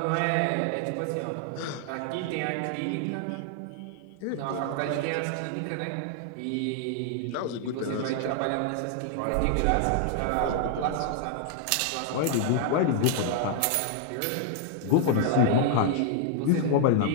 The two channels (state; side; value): different; both; correlation 0.00